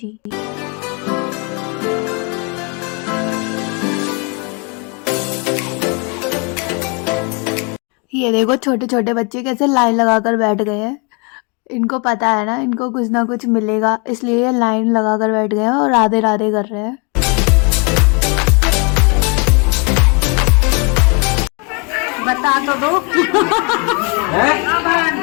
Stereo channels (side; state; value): right; quieter; 33.5 dB